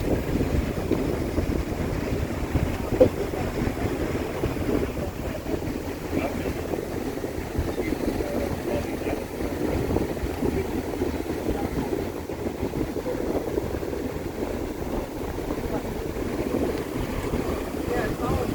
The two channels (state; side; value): identical; both; correlation 1.00